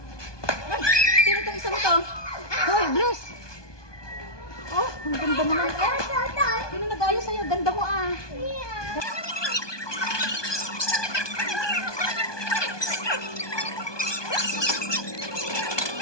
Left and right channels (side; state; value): right; late; 1.2 ms